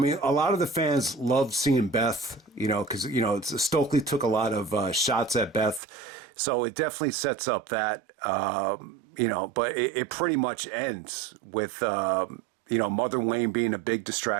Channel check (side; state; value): left; drops out; at 5.8 s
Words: a lot of the fans loved seeing Beth, because Stokely took a lot of shots at Beth, so it definitely sets up that, but it pretty much ends with Mother Wayne being a big